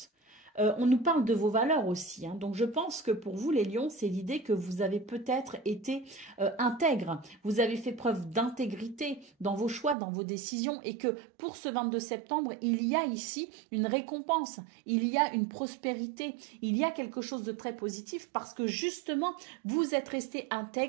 On nous parle de vos valeurs aussi, hein. Donc je pense que pour vous les lions, c'est l'idée que vous avez peut-être été intègre, vous avez fait preuve d'intégrité dans vos choix, dans vos décisions et que pour ce 22 septembre, il y a ici une récompense, il y a une prospérité, il y a quelque chose de très positif parce que justement, vous êtes resté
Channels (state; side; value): drops out; left; at 10.0 s